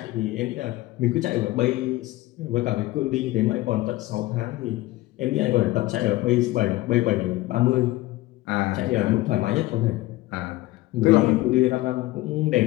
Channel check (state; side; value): quieter; right; 18.0 dB